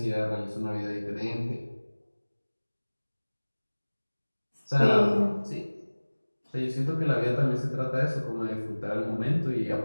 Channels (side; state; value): both; inverted; correlation -1.00